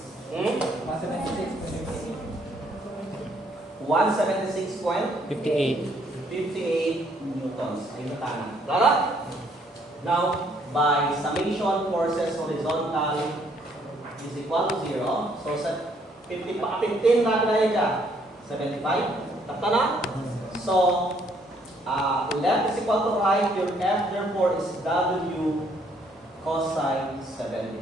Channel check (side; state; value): both; normal; correlation 0.67